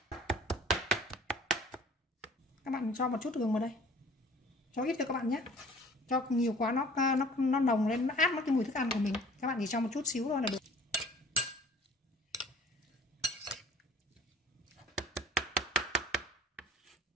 Các bạn cho một chút gừng vào đây. Cho ít cho các bạn nhé. Cho nhiều quá nó nồng lên, nó át mất cái mùi thức ăn của mình. Các bạn chỉ cho một chút xíu thôi là được.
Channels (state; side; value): normal; both; correlation 0.50